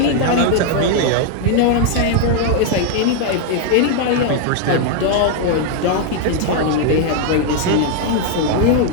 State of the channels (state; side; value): different; both; correlation 0.00